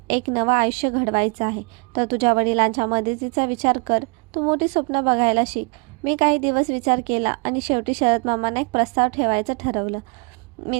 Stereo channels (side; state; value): left; quieter; 33.3 dB